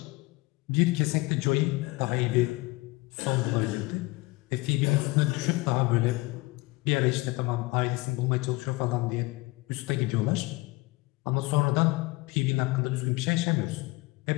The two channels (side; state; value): right; quieter; 22.6 dB